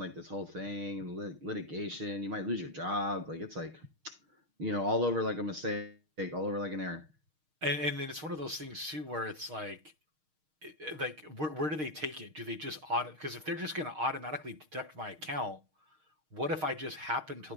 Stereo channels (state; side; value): late; left; 6.5 ms